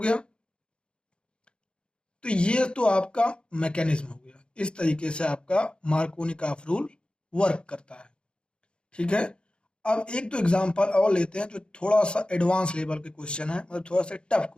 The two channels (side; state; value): right; late; 0.054 ms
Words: तो ये तो आपका मैकेनिज्म हो गया, इस तरीके से आपका मार्कोनिकॉफ रूल वर्क करता है। ठीक है, अब एक दो एग्जांपल और लेते हैं जो थोड़ा सा एडवांस लेवल के क्वेश्चन है, मतलब थोड़ा सा टफ